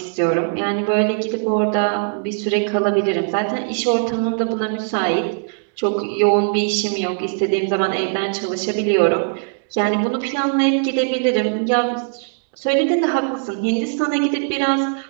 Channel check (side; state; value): left; silent; digital silence